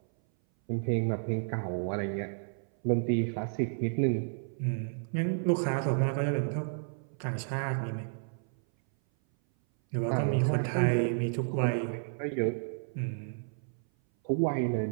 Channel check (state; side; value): silent; left; 57 dB below the other